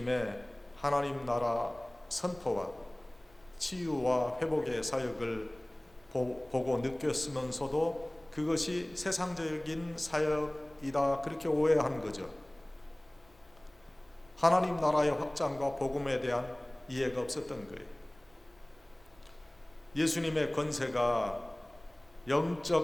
하나님 나라 선포와 치유와 회복의 사역을 보고 느꼈으면서도 그것이 세상적인 사역 것이다 그렇게 오해한 거죠. 하나님 나라의 확장과 복음에 대한 이해가 없었던 거예요. 예수님의 권세가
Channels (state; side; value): noise; left; rumble, 29 dB below the sound